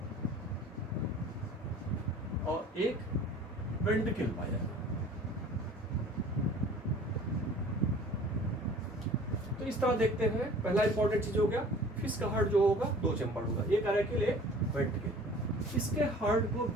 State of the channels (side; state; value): both; normal; correlation 0.47